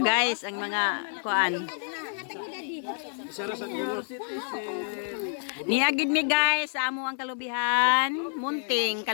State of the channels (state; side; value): silent; right; 59 dB below the other